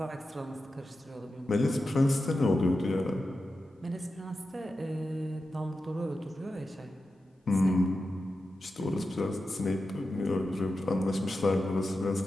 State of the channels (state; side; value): normal; both; correlation 0.91